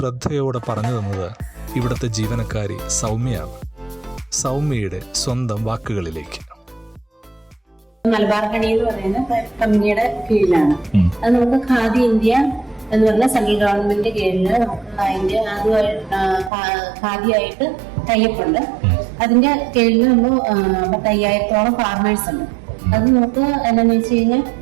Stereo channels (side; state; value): left; drops out; at 16.5 s